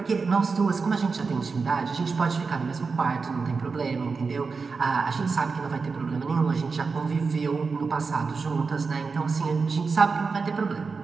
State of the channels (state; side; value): quieter; left; 4.7 dB